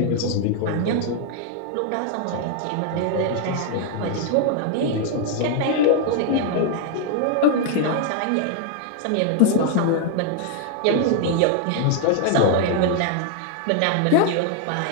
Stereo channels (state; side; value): different; both; correlation 0.00